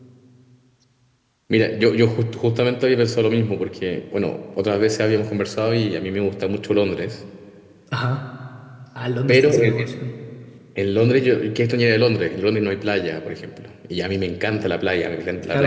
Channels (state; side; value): identical; both; correlation 1.00